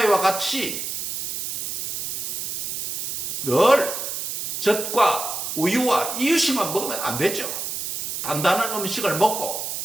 같이 늘 젖과 우유와 이유식만 먹으면 안 되죠. 단단한 음식을 먹고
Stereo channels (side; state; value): right; noise; hiss, 4 dB below the sound